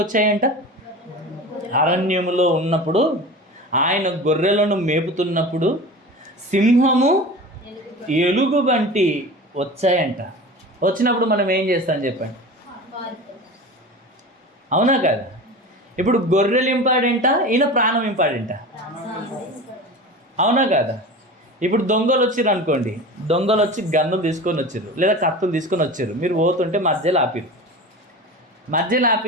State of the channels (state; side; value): normal; both; correlation 0.33